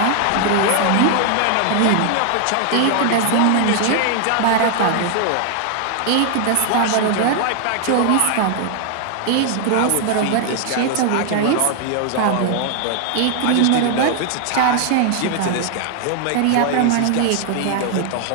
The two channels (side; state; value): both; different; correlation 0.00